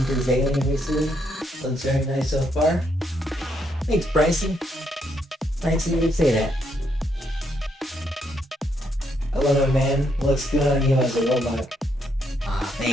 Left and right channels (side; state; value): both; normal; correlation 0.75